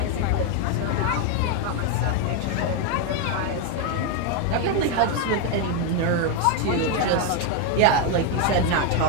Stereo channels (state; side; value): different; both; correlation 0.01